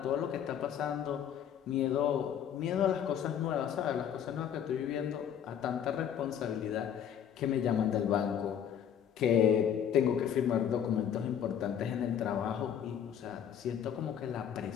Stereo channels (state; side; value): quieter; right; 9.0 dB